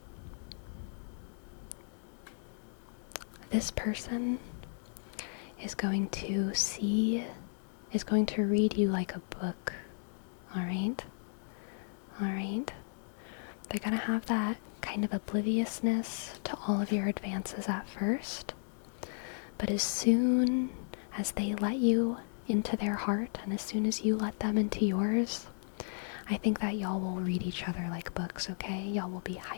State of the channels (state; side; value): silent; right; digital silence